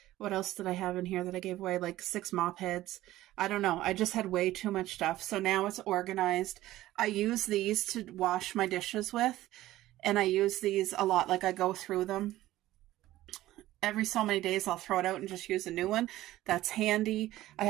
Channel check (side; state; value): left; quieter; 15.5 dB